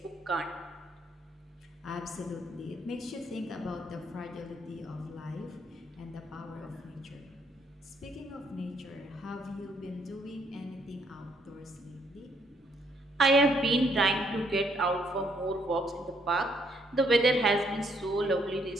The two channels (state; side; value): normal; both; correlation 0.70